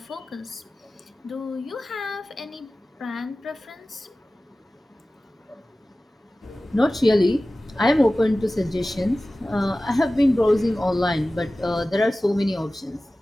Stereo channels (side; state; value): both; normal; correlation 0.96